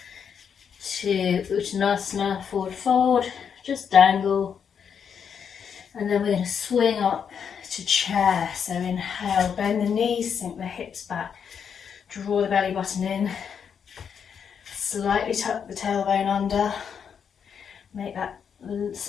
to Uttanasana, forward fold, just dangle. And then we're going to swing up to chair. So inhale, bend the knees, sink the hips back, draw the belly button in, slightly tuck the tailbone under, make that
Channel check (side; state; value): right; quieter; 7.3 dB